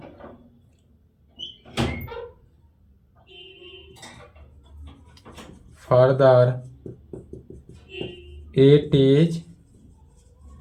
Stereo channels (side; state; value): both; identical; correlation 1.00